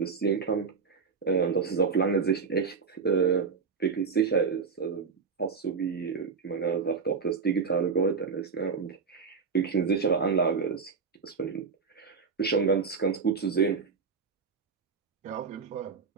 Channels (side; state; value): left; quieter; 5.5 dB